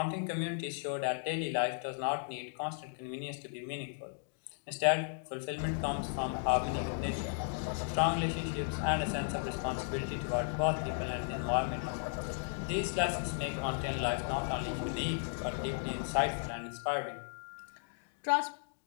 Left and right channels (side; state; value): right; silent; digital silence